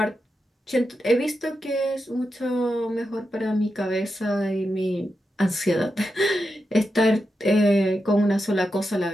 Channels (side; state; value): both; normal; correlation 0.88